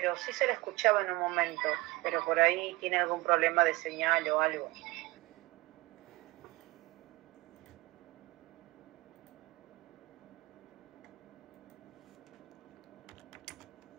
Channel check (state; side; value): quieter; left; 21.6 dB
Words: sí se le escuchaba en un momento, pero por ahí tiene algún problema de señal o algo.